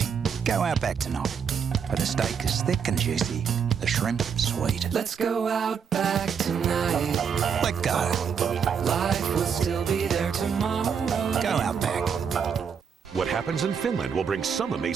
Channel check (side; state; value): left; quieter; 6.9 dB